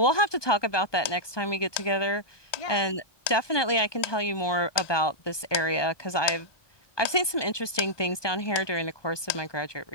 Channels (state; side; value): late; right; 1.2 ms